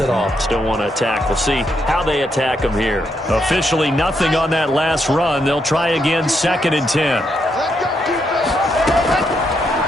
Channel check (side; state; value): both; normal; correlation 0.78